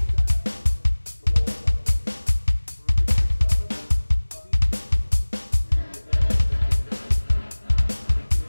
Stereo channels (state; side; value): inverted; both; correlation -1.00